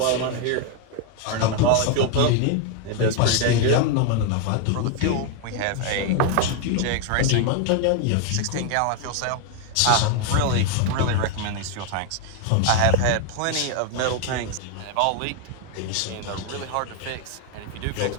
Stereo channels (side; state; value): both; different; correlation 0.01